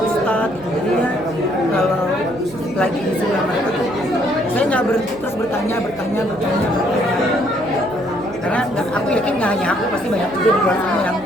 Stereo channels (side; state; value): right; noise; hum, 23 dB below the sound